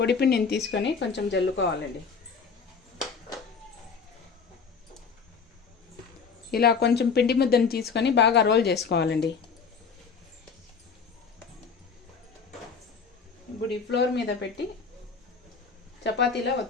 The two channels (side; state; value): right; quieter; 5.5 dB